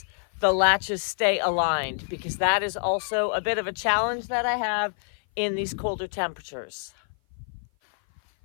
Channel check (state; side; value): silent; right; 56 dB below the other